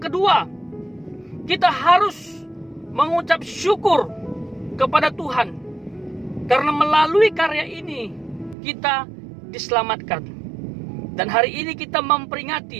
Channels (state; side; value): drops out; left; at 8.6 s